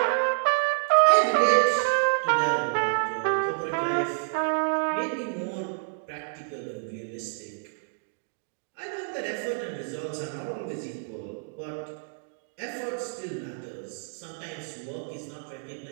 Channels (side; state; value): left; silent; digital silence